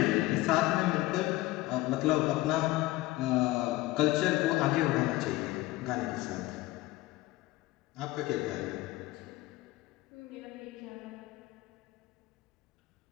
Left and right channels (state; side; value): quieter; right; 18.4 dB